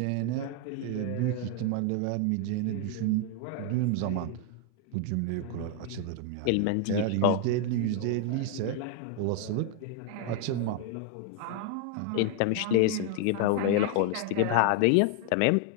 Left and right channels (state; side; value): different; both; correlation 0.00